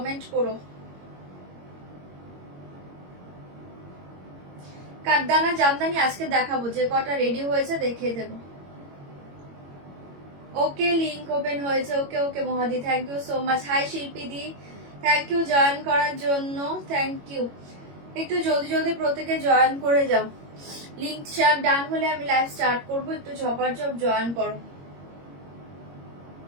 করো। কাঠদানা জামদানি আজকে দেখাবো, যে কটা রেডি হয়েছে দেখিয়ে দেব। ওকে, লিংক ওপেন হয়েছে। ওকে ওকে মহাদি, thank you so much. Hi Shilpi di, thank you join করার জন্য, থ্যাংক ইউ। একটু জলদি জলদি প্রত্যেকে জয়েন করে যাও। লিংক শেয়ার ডান হলে আমি লাইভ স্টার্ট করবো, একটু ঝপাঝপ জয়েন করো।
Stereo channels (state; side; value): late; left; 21 ms